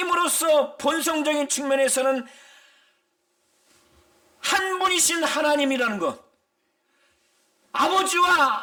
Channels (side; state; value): both; identical; correlation 1.00